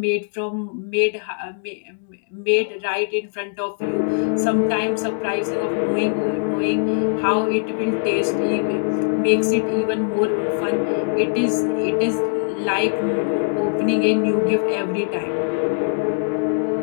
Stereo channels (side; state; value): right; silent; digital silence